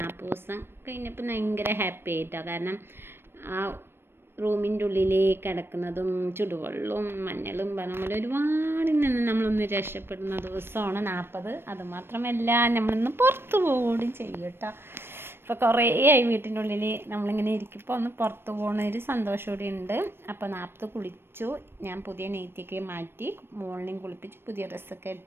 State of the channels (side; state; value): left; late; 0.11 ms